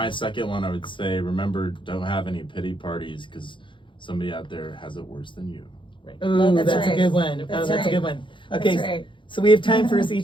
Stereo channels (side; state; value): right; late; 0.24 ms